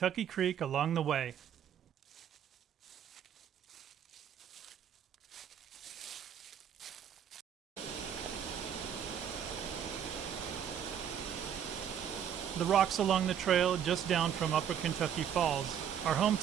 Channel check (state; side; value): quieter; left; 8.9 dB